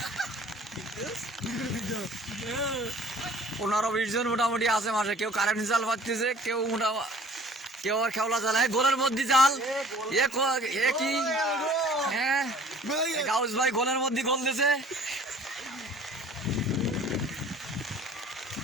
15-20 জন মোটামুটি আছে মাঠে। কেউ কারেন্ট জাল পাততেছে, কেউ কেউ আর খেওলা জাল। গোলের মধ্যে জাল এ কি, হ্যাঁ গাউস ভাই গোলের মধ্যে গোল দিছে।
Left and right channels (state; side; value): normal; both; correlation 0.50